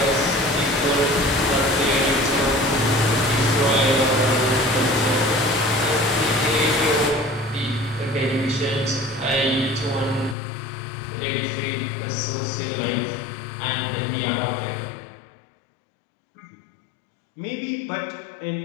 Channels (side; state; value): right; drops out; at 10.4 s